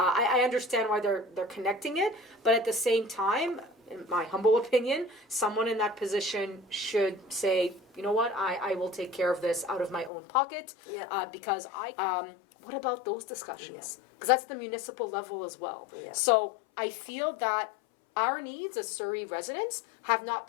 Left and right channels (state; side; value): drops out; right; at 10.1 s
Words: understand why they're connecting it, but at the same time, in my humble opinion, someone in that position should say, you know what, I will take care of this out of my own pocket, because what about those discussions? Because that's the municipal level as well. So I feel that our needs as Surrey residents have not